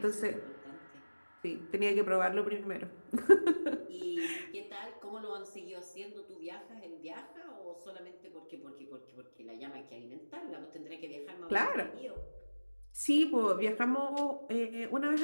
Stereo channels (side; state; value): both; inverted; correlation -1.00